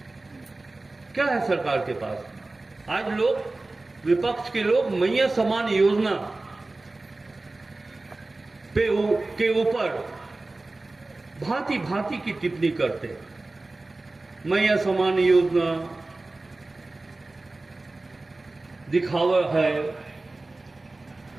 क्या है सरकार के पास? आज लोग, विपक्ष के लोग मैया समान योजना के ऊपर भांति भांति की टिप्पणी करते हैं। मैया समान योजना दिखावा है,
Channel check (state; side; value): quieter; left; 3.1 dB